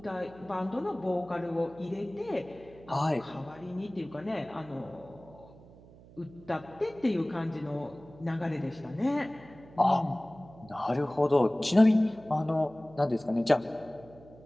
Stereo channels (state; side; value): noise; right; hum, 22 dB below the sound